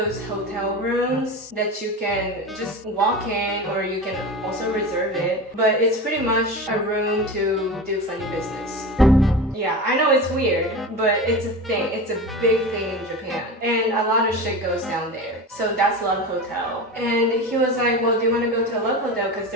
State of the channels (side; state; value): both; normal; correlation 0.28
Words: hotel rooms that you can just walk in or you can also reserve it, but it's pretty much a room to do funny business. Yeah, I know it's weird, but it's a thing. It's a big thing in Japan. And a lot of shit goes down there. So that's Love Hotel. And he was like, well, do you want to go to a Love Hotel? Because